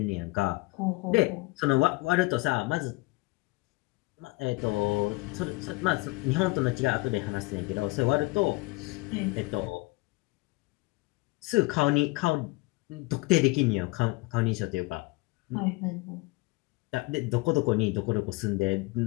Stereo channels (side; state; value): right; quieter; 23.9 dB